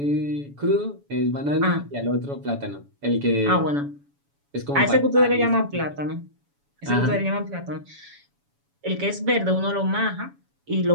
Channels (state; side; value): late; left; 7.1 ms